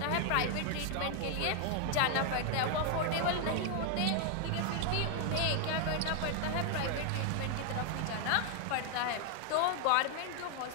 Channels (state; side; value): different; both; correlation 0.00